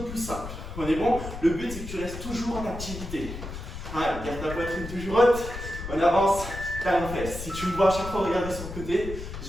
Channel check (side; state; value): left; noise; rumble, 9 dB below the sound